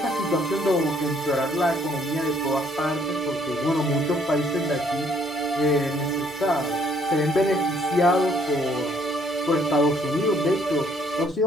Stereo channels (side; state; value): both; normal; correlation 0.65